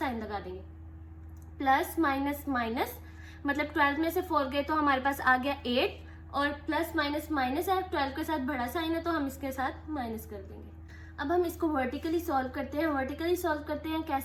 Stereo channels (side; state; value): both; identical; correlation 1.00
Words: लगा देंगे। प्लस माइनस माइनस, मतलब 12 में से 4 गए तो हमारे पास आ गया 8, और प्लस माइनस माइनस है, 12 के साथ बड़ा साइन है, तो हम इसके साथ माइनस कर देंगे। अब हम इसको वर्टिकली सॉल्व करते हैं। वर्टिकली सॉल्व करते हैं